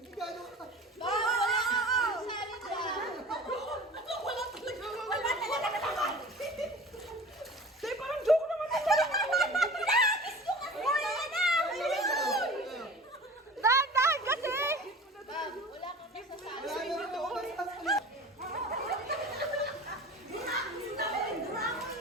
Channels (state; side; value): normal; both; correlation 0.39